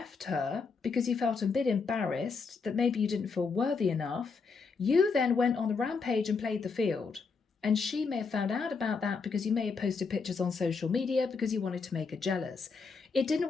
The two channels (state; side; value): quieter; right; 4.9 dB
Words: her because you felt a bit embarrassed that maybe you didn't feel worthy enough. You then went on the rampage and played the field. And she may have found out about that because you may have posted pictures on social media because you wanted to make her jealous. It